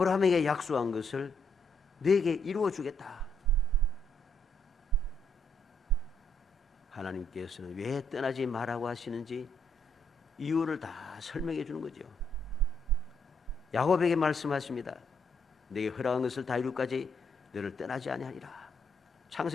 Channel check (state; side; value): normal; both; correlation 0.73